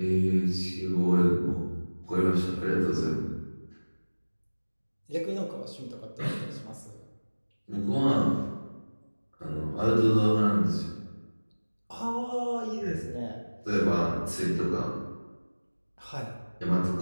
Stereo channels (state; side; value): inverted; both; correlation -1.00